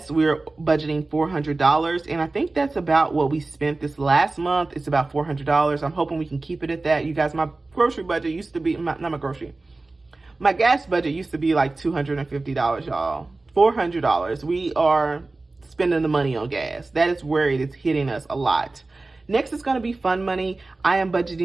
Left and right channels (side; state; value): left; quieter; 3.3 dB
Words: we're budgeting $400. And I think that's about what we spent this last month. It's about $400. I'm hoping we can keep it at that. You guys, my grocery budget used to be, my gas budget used to be like $250, y'all. $400. We are spending the money on gas. That is where it is hitting us a lot. Next is going to be fun money. I am